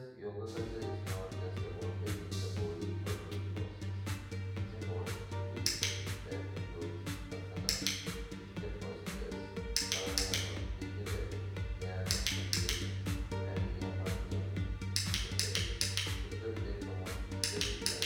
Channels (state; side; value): identical; both; correlation 1.00